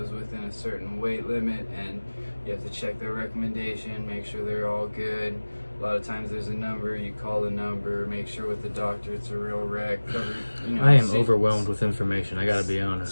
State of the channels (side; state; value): both; inverted; correlation -1.00